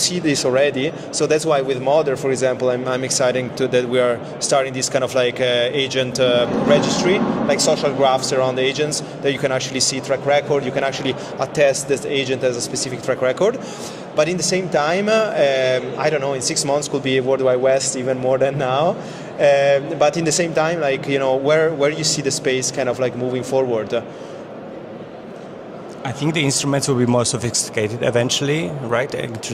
this already. So that's why with Modder, for example, I'm excited that we are starting this kind of like agent registry, like social graphs around agents that you can actually see track record. You can actually attest this agent as a specific track record. But in the same time, I don't know, in 6 months could be World Wide West even more than now. But in the same time, like, where you see the space kind of like moving forward? I think the instruments will be more sophisticated eventually, right?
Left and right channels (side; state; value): both; identical; correlation 1.00